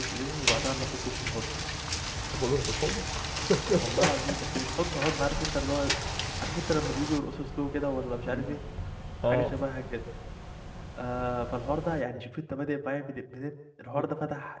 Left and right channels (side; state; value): both; identical; correlation 1.00